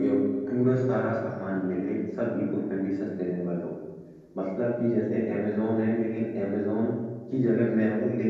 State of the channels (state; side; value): identical; both; correlation 1.00